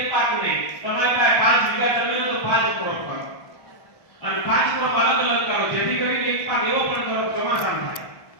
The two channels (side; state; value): right; late; 1.6 ms